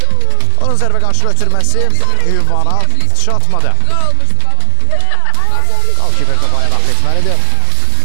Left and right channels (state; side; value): different; both; correlation 0.00